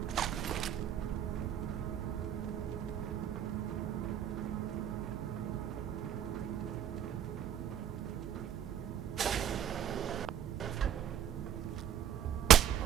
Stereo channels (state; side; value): quieter; left; 9.8 dB